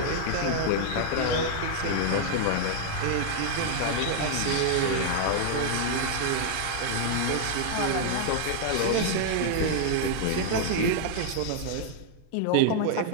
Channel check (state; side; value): different; both; correlation -0.01